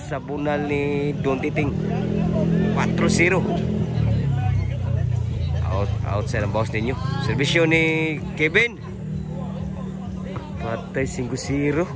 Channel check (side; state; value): both; identical; correlation 1.00